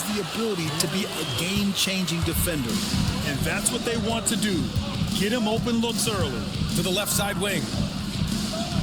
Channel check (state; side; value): identical; both; correlation 1.00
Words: the ability to be a game-changing defender. And that's what they want to do. Get him open looks early. To the left side wing.